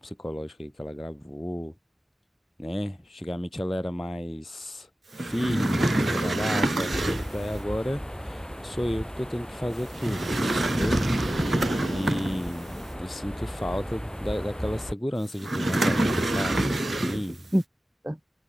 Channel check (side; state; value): both; normal; correlation 0.95